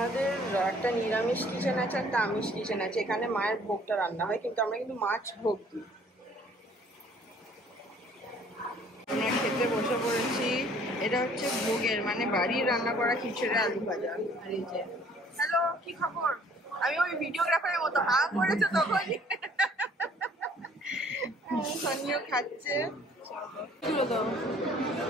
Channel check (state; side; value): normal; both; correlation 0.57